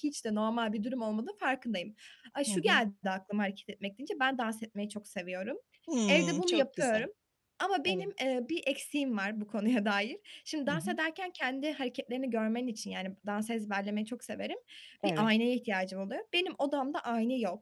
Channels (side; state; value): both; identical; correlation 1.00